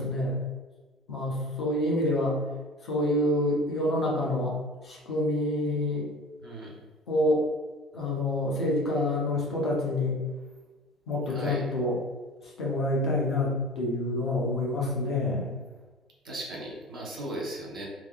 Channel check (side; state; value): both; normal; correlation 0.37